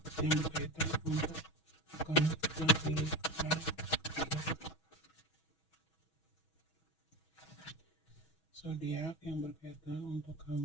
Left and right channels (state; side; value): late; right; 6.2 ms